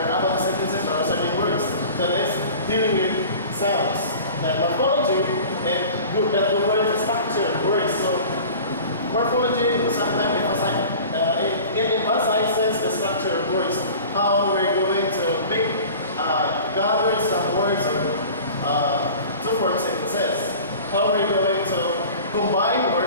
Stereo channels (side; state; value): both; inverted; correlation -0.41